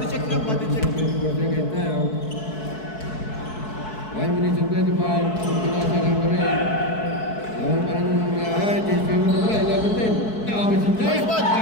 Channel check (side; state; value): right; late; 4.6 ms